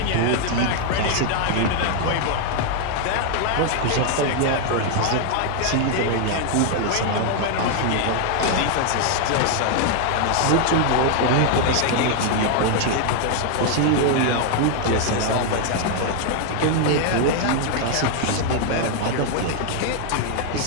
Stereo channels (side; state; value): both; different; correlation 0.00